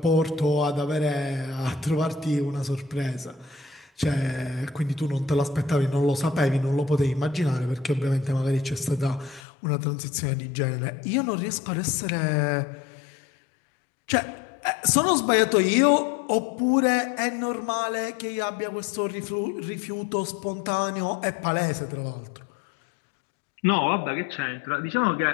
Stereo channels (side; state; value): right; drops out; at 9.4 s